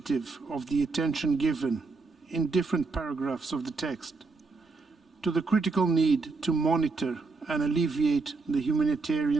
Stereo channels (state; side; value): quieter; left; 4.1 dB